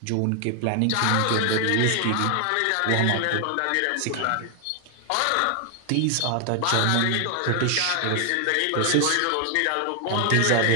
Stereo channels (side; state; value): both; different; correlation 0.00